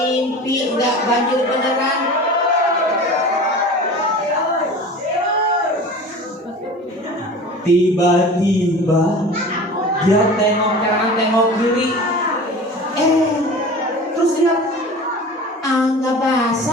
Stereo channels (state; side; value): normal; both; correlation 0.37